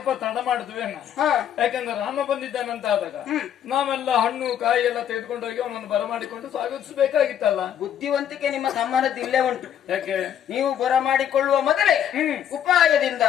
ತಡ ಮಾಡಿದ್ವಿ, ಯಾಕಂದ್ರೆ ರಾಮ ಬಂದಿದ್ದಾನಂತ ಆದಾಗ ನಾವೆಲ್ಲ ಹಣ್ಣು ಕಾಯಿ ಎಲ್ಲ ತೆಗೆದುಕೊಂಡು ಹೋಗಿ ಅವನನ್ನು ಬರಮಾಡಿಕೊಂಡು ಸ್ವಾಗತಿಸಬೇಕಾಗಿತ್ತಲ್ಲ. ಬುದ್ಧಿವಂತಿಕೆ ನಿಮ್ಮ ತಮ್ಮನದ್ದು ಇಲ್ಲೇ ಉಂಟು. ಯಾಕೆ? ನೀವು ಬರಮಾಡಿಕೊಳ್ಳುವ ಮೊದಲೇ ಉಪಾಯದಿಂದ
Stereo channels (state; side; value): quieter; right; 9.7 dB